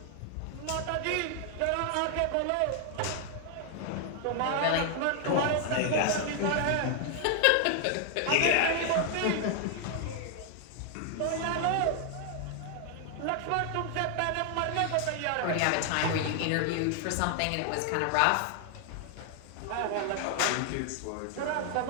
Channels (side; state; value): both; different; correlation 0.00